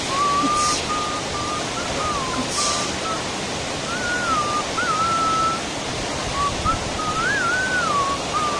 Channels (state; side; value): identical; both; correlation 1.00